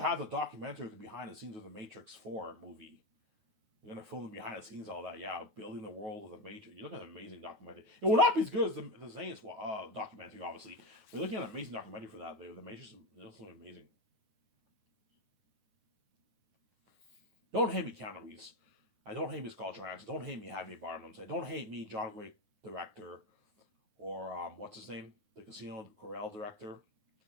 the documentary of the behind the scenes of the Matrix 4 movie. You're gonna film the behind the scenes, all that, yeah, building the world of the Matrix. You're looking at an amazing documentary. It will not be as good as the Zane's documentary, obviously. But you're looking at an amazing documentary for that. The Matrix is amazing. Don't hate me, Keanu Reeves. I don't hate me, Scarlett Johansson. Don't hate me, Javier Bardem. Don't hate me, John Wick director, or what's his name, the Casino Royale director.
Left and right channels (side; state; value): left; late; 9.3 ms